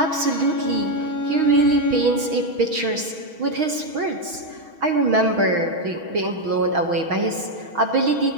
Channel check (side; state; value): left; late; 6.3 ms